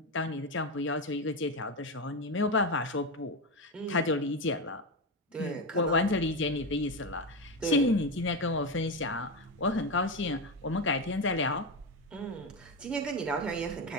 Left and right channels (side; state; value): both; normal; correlation 0.14